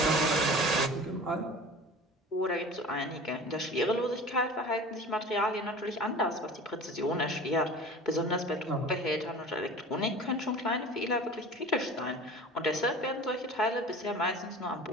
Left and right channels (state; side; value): normal; both; correlation 0.39